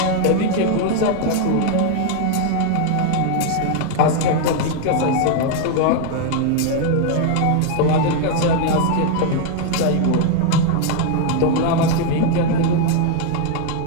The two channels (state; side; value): different; both; correlation 0.00